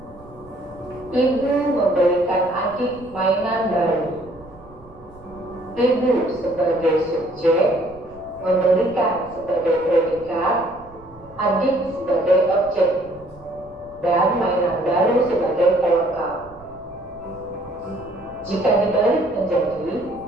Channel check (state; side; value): noise; right; rumble, 23 dB below the sound